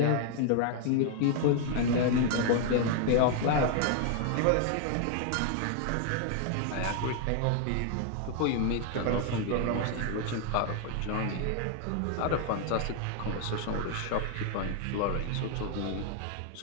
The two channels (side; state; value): both; different; correlation 0.00